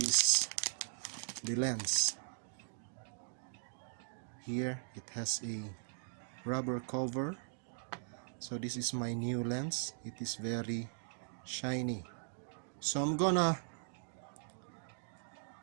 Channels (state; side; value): silent; left; digital silence